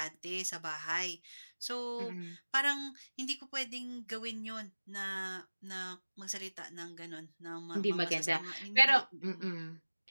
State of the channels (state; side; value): inverted; both; correlation -1.00